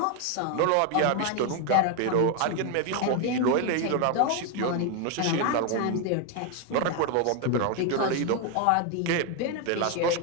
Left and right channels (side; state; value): both; different; correlation 0.01